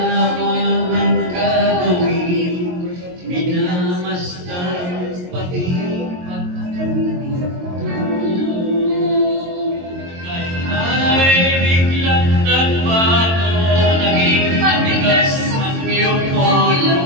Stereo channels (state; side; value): late; left; 22 ms